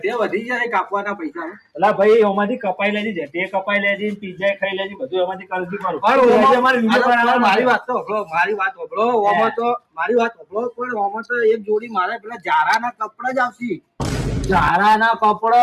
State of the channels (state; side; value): identical; both; correlation 1.00